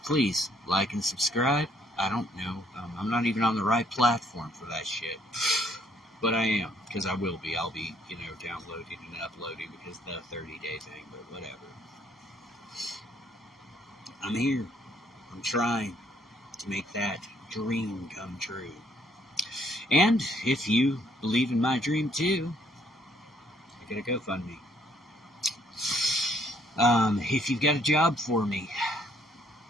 like and subscribe. I don't know. I'm not even on the right platform for that shit. But I am, because I will be. I'll be, downloading and uploading because of the 30-day thing, but whatever. I'm here. I'm trying to make that dream come true. And if you believe in my dream too, I gotta GoFundMe. If you've got a job for me,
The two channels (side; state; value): both; normal; correlation 0.67